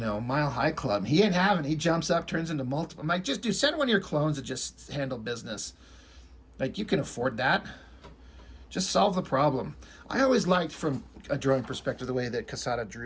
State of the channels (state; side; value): identical; both; correlation 1.00